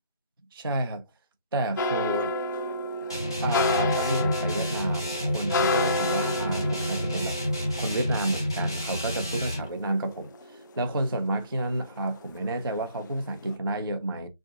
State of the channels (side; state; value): both; inverted; correlation -0.56